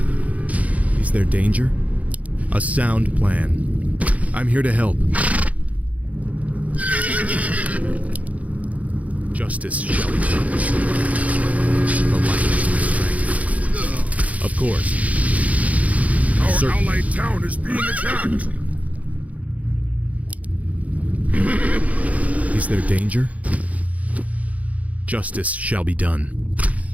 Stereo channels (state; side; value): late; left; 0.070 ms